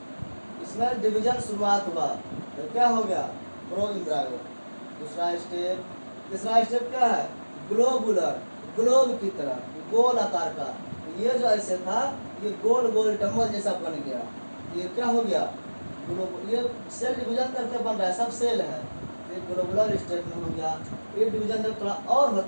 इसमें डिवीजन शुरुआत हुआ तो क्या हो गया, प्रो एम्ब्रायो। दूसरा स्टेप, तीसरा स्टेप क्या है, ग्लोबुलर, ग्लोब की तरह गोल आकार का। ये जो ऐसे था ये गोल गोल डम्बल जैसा बन गया, ये क्या हो गया, ये सेल डिवीजन करके बन रहा है, सब सेल है, ये ग्लोबुलर स्टेट में हो गया। ये डिवीजन जब थोड़ा और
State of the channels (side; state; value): both; inverted; correlation -1.00